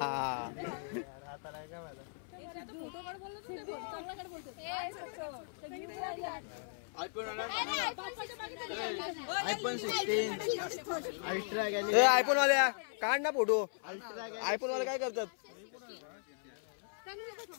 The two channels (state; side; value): silent; right; 53 dB below the other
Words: फोटो काढ बोललो तू नाही बोल. चांगला काढ बोलतो. आयफोन 16 अल्ट्रा गेले. ए आयफोन वाल्या काढ ना फोटो. आयफोन वाले काय करतात.